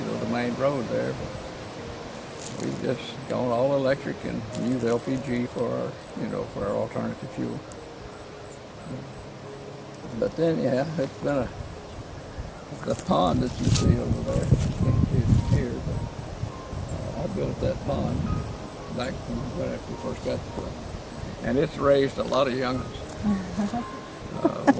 the main road there. But we've just gone all electric and use LPG for our alternative fuel. But then, yeah, it's been the pond that you see over there. You can't see it from here, but I built that pond back right after we first got the place. And it's raised a lot of young'uns.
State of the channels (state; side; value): identical; both; correlation 1.00